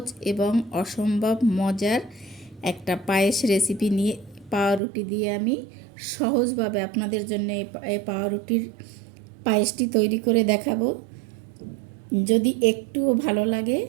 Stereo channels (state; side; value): drops out; left; at 4.8 s